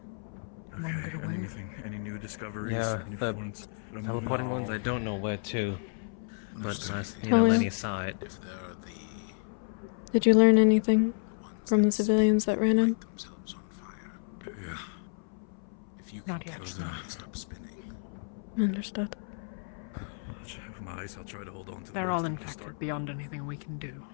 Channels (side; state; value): right; silent; 57 dB below the other